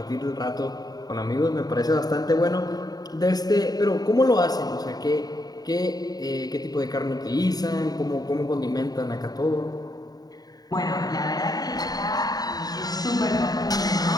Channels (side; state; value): right; late; 0.19 ms